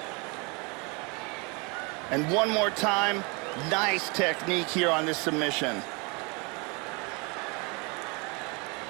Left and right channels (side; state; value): left; quieter; 30.0 dB